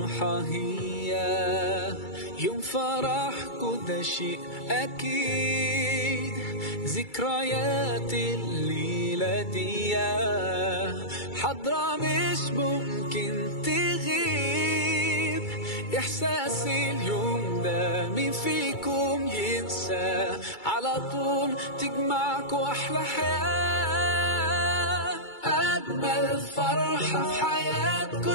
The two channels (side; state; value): right; late; 2.3 ms